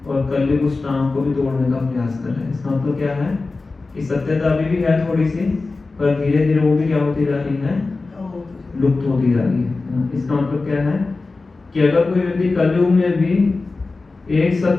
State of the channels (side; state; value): right; quieter; 3.7 dB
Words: और कलयुग उस टांग को भी तोड़ने का प्रयास कर रहे हैं। इसका मतलब क्या है कि सत्यता अभी भी है थोड़ी सी, पर धीरे धीरे वो भी क्या होती जा रही है, लुप्त होती जा रही है। इसका मतलब क्या है कि अगर कोई व्यक्ति कलयुग में भी एक